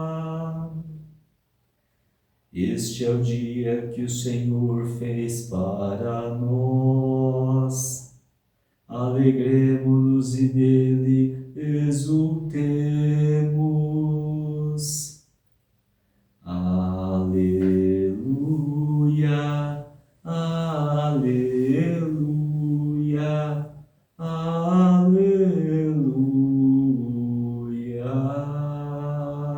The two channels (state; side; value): identical; both; correlation 1.00